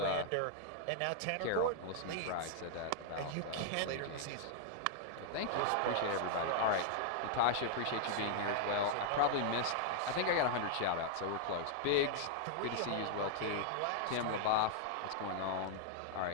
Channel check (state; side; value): different; both; correlation -0.01